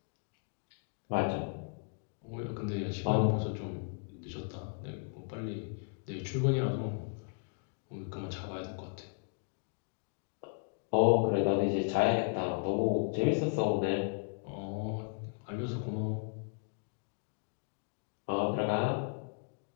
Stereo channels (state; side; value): quieter; right; 38.7 dB